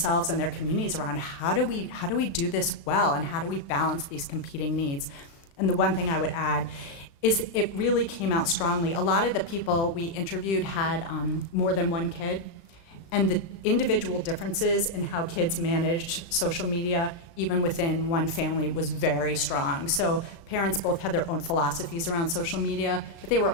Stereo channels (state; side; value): late; right; 36 ms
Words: and their communities around how do we do this well, and how do we balance these competing needs? And the one thing I would add is it really came out strongly. A lot of the people we interviewed had more than one kid, and the individual differences in how kids managed social media, even within one family, was very strong. So parents both had their own philosophies around social media, but they were